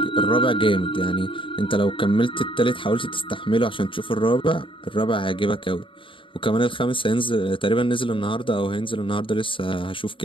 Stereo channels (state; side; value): late; right; 0.25 ms